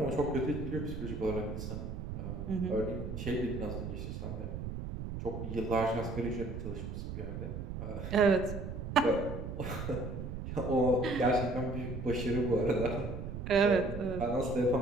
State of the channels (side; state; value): right; noise; rumble, 6 dB below the sound